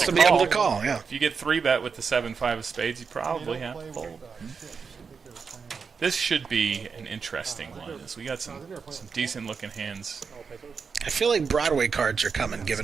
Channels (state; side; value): quieter; left; 5.6 dB